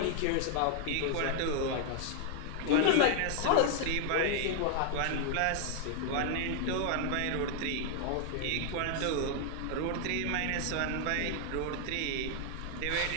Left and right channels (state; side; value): different; both; correlation 0.00